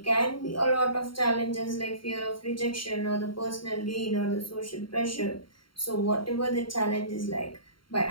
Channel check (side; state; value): right; late; 0.73 ms